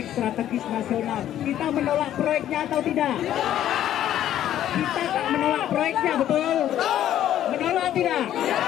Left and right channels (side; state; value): right; quieter; 11.7 dB